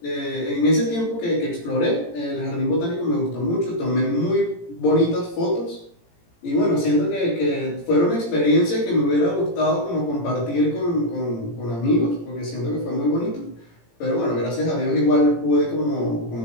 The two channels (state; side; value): late; right; 17 ms